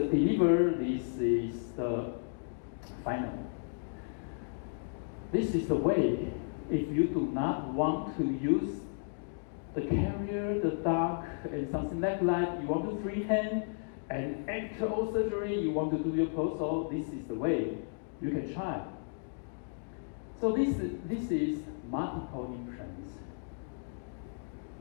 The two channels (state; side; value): silent; right; digital silence